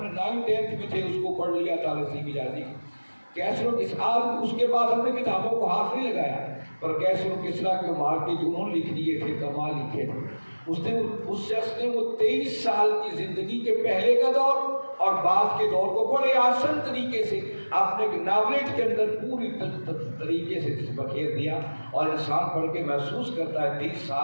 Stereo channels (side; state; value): both; inverted; correlation -1.00